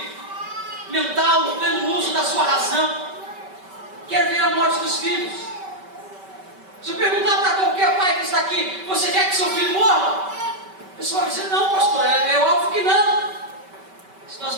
mental, no pleno uso da sua razão, quer ver a morte dos filhos. Se eu perguntar para qualquer pai que está aqui: você quer que seu filho morra? A pessoa vai dizer: não, pastor, é óbvio que não. Se nós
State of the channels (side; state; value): left; late; 5.2 ms